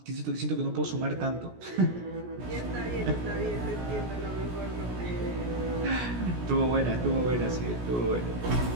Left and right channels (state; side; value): late; left; 17 ms